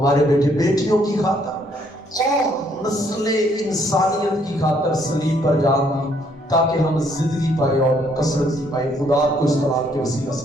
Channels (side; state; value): both; normal; correlation 0.68